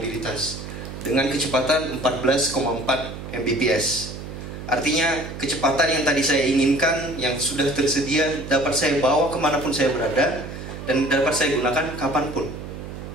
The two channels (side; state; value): right; noise; hum, 10 dB below the sound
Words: dengan kecepatan 14,4 Mbps. Artinya kecepatan yang tadi saya inginkan, yang sudah tersedia, dapat saya bawa kemanapun saya berada dan dapat saya gunakan kapanpun.